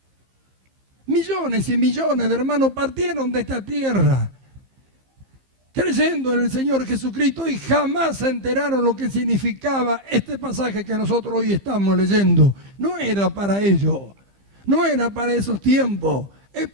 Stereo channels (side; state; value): left; late; 15 ms